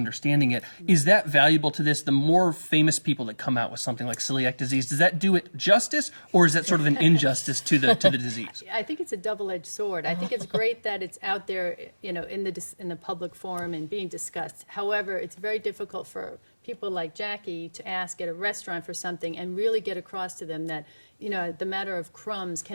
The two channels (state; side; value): inverted; both; correlation -1.00